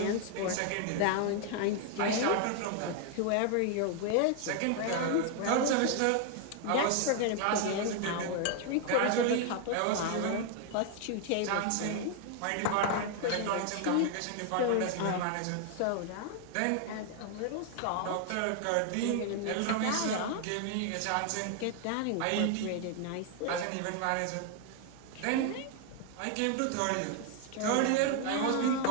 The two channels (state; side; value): different; both; correlation 0.00